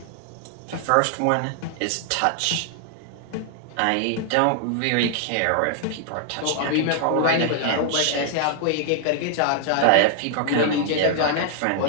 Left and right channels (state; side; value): different; both; correlation 0.00